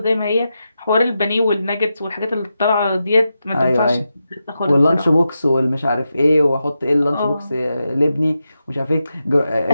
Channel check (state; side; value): inverted; both; correlation -0.88